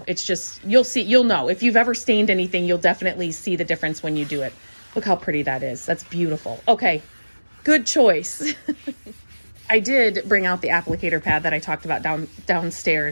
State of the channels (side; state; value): both; inverted; correlation -1.00